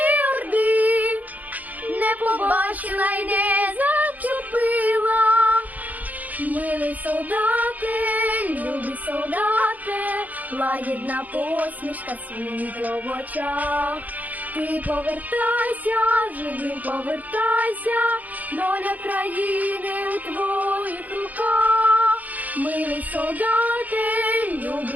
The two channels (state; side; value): late; left; 0.079 ms